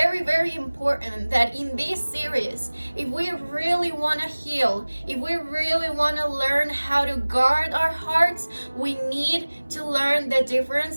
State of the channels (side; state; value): both; inverted; correlation -1.00